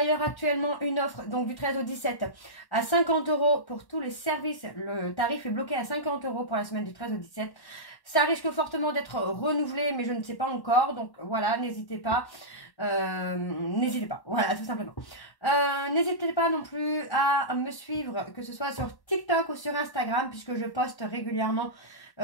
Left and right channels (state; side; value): late; right; 1.1 ms